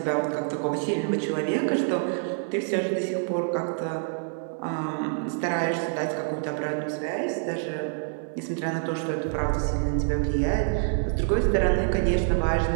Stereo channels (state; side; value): silent; left; digital silence